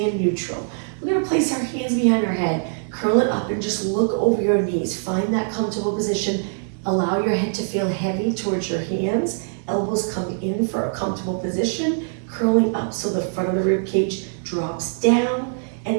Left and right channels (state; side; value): silent; left; digital silence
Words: in neutral. We're gonna place our hands behind our head, curl it up, and just look over your knees. Find that comfortable position. Allow your head to feel heavy towards your hands. Elbows come in for a comfortable position, curling up so the front of the rib cage drops down,